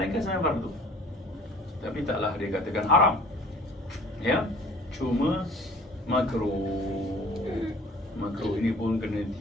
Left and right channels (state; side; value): normal; both; correlation 0.49